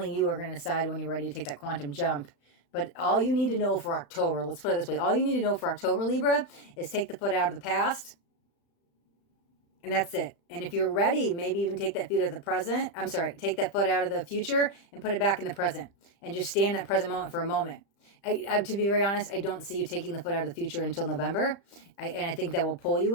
you are going to decide when you're ready to take that quantum jump. But all you need to know for October, let's put it this way, all you need to know for October, Libra, is take the foot out of the past, and that's it. And if you're ready, maybe even take that foot out of the present. Take that foot out of the future and put it back in the present, and just stay in that present moment for a moment. To be very honest, I don't see you taking the foot out of the future until November. And I think that will pull you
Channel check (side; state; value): right; late; 35 ms